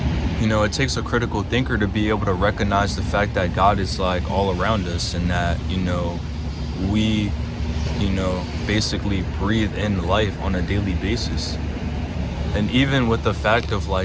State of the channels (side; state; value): both; identical; correlation 1.00